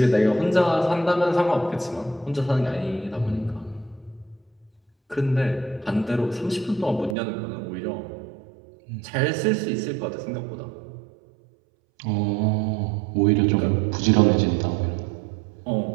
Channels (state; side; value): drops out; left; at 7.2 s